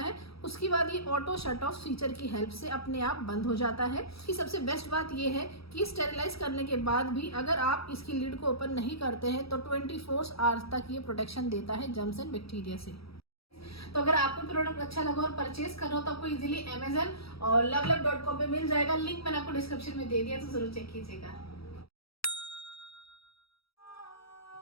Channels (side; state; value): right; late; 0.76 ms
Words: उसके बाद ये ऑटो शट ऑफ फीचर की हेल्प से अपने आप बंद हो जाता है। इसकी सबसे बेस्ट बात ये है कि स्टेरिलाइज करने के बाद भी अगर आप इसकी लिड को ओपन नहीं करते हैं तो 24 आवर्स तक ये प्रोटेक्शन देता है जर्म्स एंड बैक्टीरिया से। तो अगर आपको प्रोडक्ट अच्छा लगा और परचेज करना हो तो आपको इजीली Amazon और lovelove.com पे मिल जाएगा। लिंक मैंने आपको डिस्क्रिप्शन में दे दिया, तो जरूर चेक कीजिएगा।